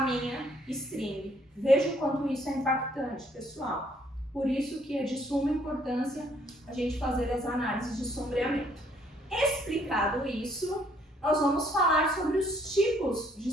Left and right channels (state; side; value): normal; both; correlation 0.66